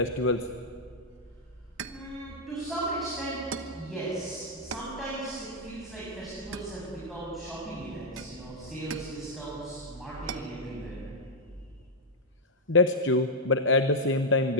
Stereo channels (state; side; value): normal; both; correlation -0.03